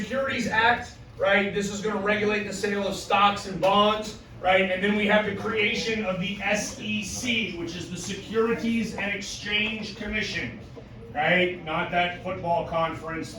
Act, right? This is going to regulate the sale of stocks and bonds, right? And then we have the creation of the SEC, which is the Securities and Exchange Commission, right? Not that football conference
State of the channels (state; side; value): identical; both; correlation 1.00